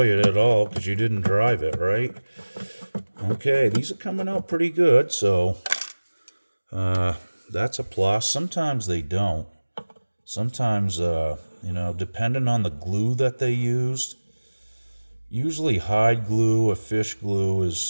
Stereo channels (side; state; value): both; inverted; correlation -1.00